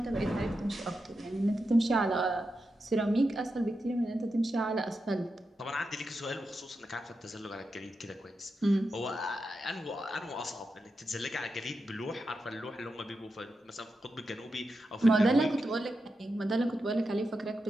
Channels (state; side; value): normal; both; correlation 0.88